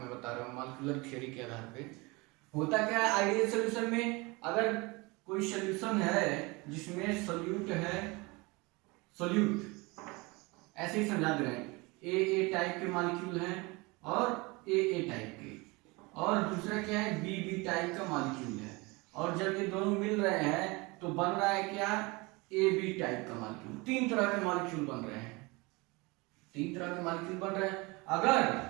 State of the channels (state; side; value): quieter; left; 25.5 dB